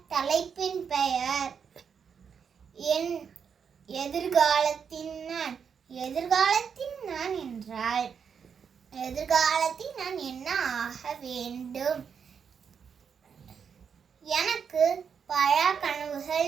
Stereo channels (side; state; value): left; quieter; 6.8 dB